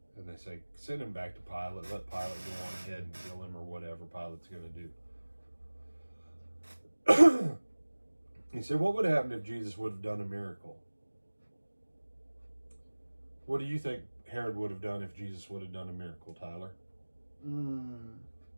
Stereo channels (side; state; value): both; inverted; correlation -1.00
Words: And they say, send him back to Pilate, let Pilate go on ahead and kill him or whatever Pilate's going to do. He said, what would have happened if Jesus would have done a miracle? What do you think Herod would have done if Jesus would have done a miracle, Tyler?